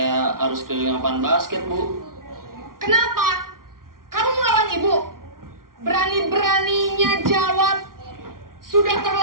harus keliling lapangan basket, Bu? Kenapa? Kamu melawan ibu? Berani-beraninya jawab. Sudah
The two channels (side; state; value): left; late; 0.92 ms